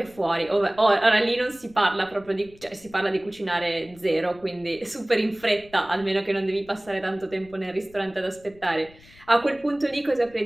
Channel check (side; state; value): left; noise; rumble, 25 dB below the sound